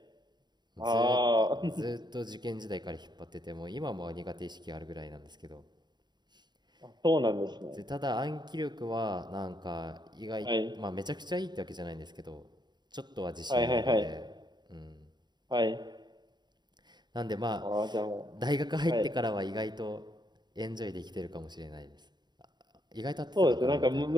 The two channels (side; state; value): left; late; 0.21 ms